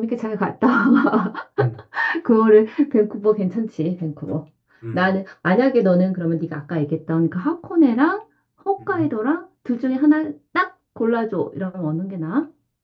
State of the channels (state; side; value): identical; both; correlation 1.00